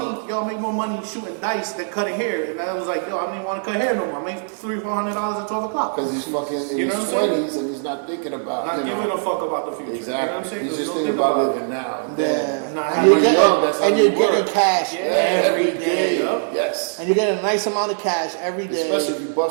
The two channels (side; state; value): left; silent; 65 dB below the other